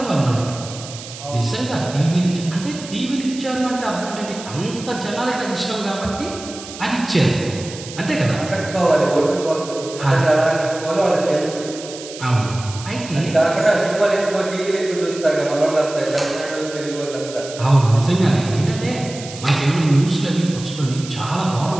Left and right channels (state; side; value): noise; right; hiss, 13 dB below the sound